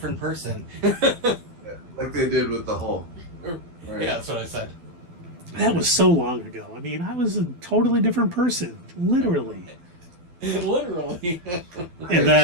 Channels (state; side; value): late; left; 12 ms